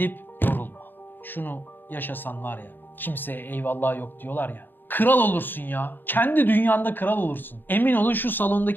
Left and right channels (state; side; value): late; right; 0.093 ms